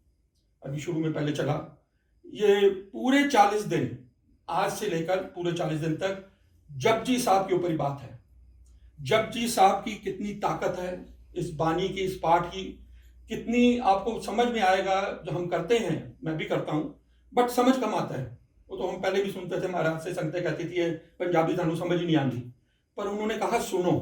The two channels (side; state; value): both; identical; correlation 1.00